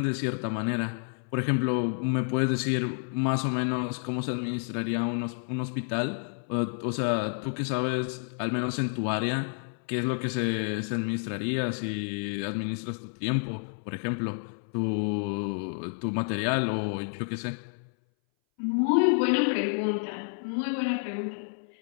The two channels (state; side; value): silent; right; 58 dB below the other